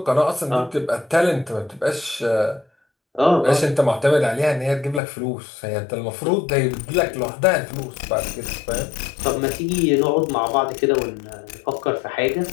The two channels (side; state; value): right; drops out; at 5.0 s